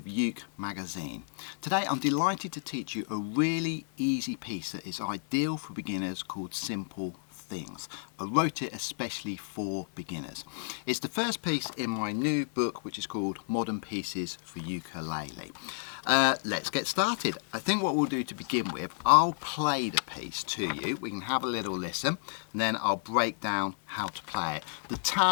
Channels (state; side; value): silent; right; digital silence